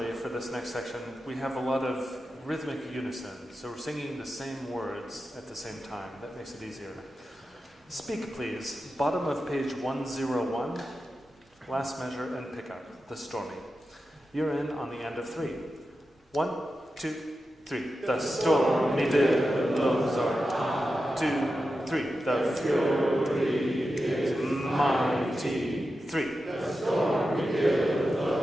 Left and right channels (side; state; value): both; normal; correlation 0.91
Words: for this next section, we have a lot of rhythmic unison, so we're singing the same words at the same time. That makes it easier. Speak, please. Bottom of page 101, last measure and pickup, the stormy. You're in on the end of 3. 1, 2, 3. The stormy billows are high. 2, 3. The fury is mighty. 3. The stormy